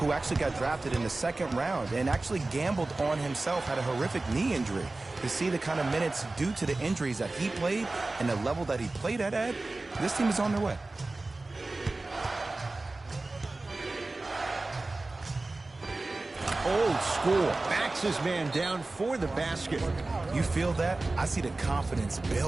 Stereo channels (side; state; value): left; quieter; 3.1 dB